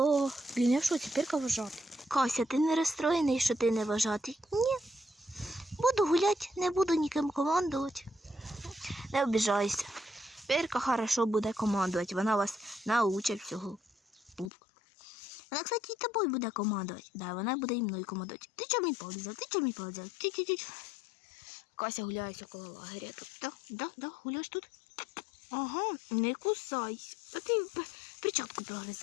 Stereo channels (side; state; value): right; drops out; at 14.5 s